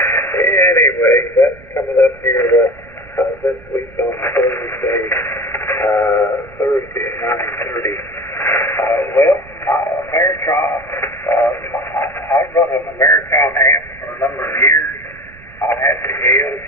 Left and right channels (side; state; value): right; noise; rumble, 22 dB below the sound